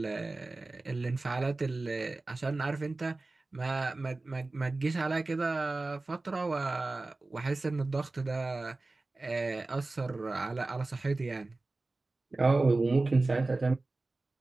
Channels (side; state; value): left; quieter; 3.2 dB